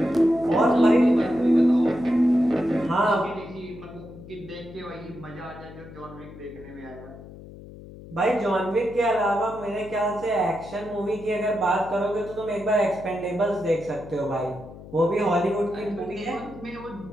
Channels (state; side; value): noise; left; hum, 16 dB below the sound